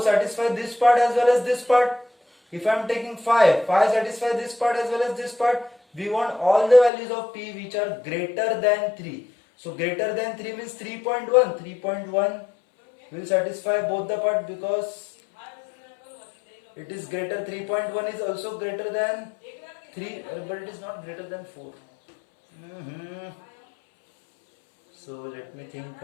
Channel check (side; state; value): right; drops out; at 6.9 s